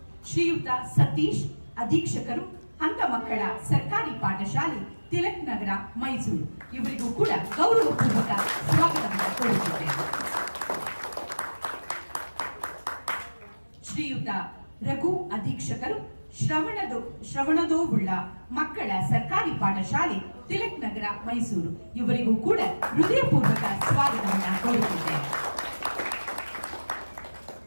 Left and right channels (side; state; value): both; inverted; correlation -1.00